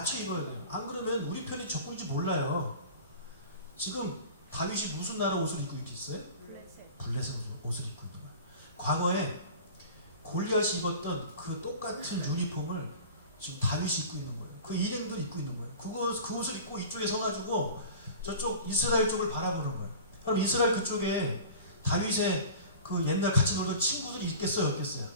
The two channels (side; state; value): both; inverted; correlation -0.38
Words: 입어야 돼요. 안 그러면 우리 편이 적군인지 몰라요. 지금 다윗이 무슨 나라 옷을 입고 있어요? 블레셋 옷을 입고 있는 거예요. 과거에 골리앗이 입었던 그 똑같은 유니폼을 지금 다윗이 입고 있는 거예요. 그 일행들이 입고 있는 거예요. 그 옷을 입고 이쪽에 서가지고 저쪽 이스라엘 쪽을 바라보는 거예요. 그럼 이스라엘 그쪽에 다윗의 그 옛날 같이 놀던 친구들이 있겠어요, 없겠어요?